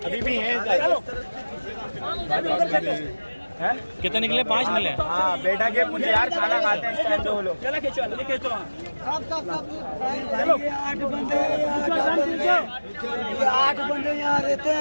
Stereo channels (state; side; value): inverted; both; correlation -1.00